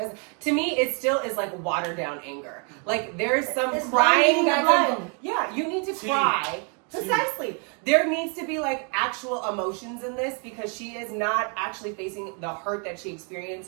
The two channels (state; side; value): quieter; left; 38.3 dB